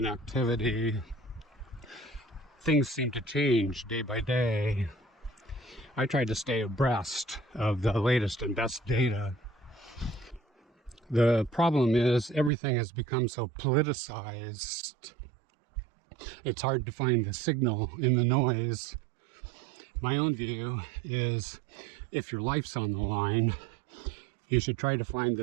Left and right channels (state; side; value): drops out; left; at 12.5 s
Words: activity. Things seem to change day by day. I try to stay abreast of the latest and best data. The problem is everything has become so politicized. It's hard to find the signal in the noise. My own view is if your life's on the line, you should try to find